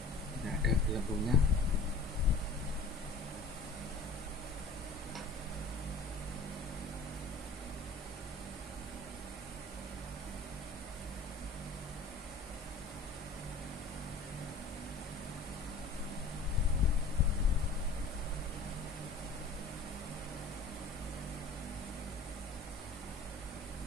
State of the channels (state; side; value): quieter; right; 3.6 dB